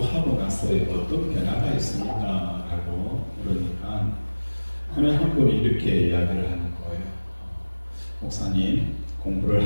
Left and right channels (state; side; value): inverted; both; correlation -1.00